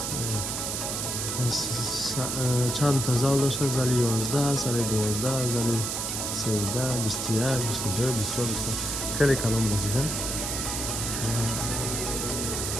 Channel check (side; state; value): right; noise; hiss, 2 dB below the sound